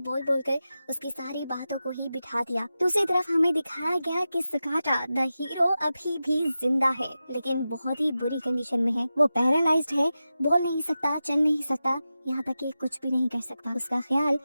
बोलकर उसकी सारी बातों को ही बिठा दिया। दूसरी तरफ हमें दिखाया गया कि सगाटा द हीरो अभी भी जिंदा है, लेकिन बहुत ही बुरी कंडीशन में है। वो पैरालाइज्ड है, बोल नहीं सकता, चल नहीं सकता, यहाँ तक कि कुछ भी नहीं कर सकता। उसका ख्याल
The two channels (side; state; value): both; inverted; correlation -0.93